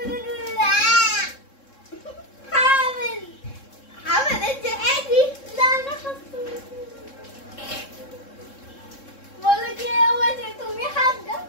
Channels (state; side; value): late; right; 3.7 ms